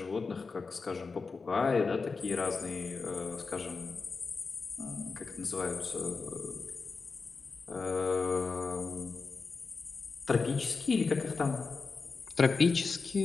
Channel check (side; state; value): right; quieter; 4.5 dB